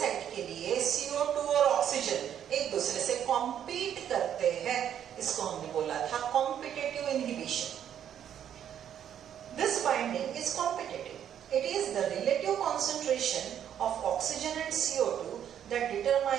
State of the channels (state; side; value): quieter; left; 9.6 dB